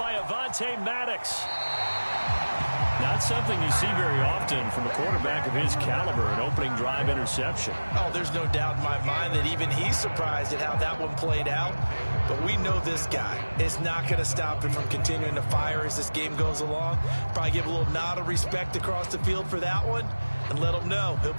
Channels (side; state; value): both; inverted; correlation -1.00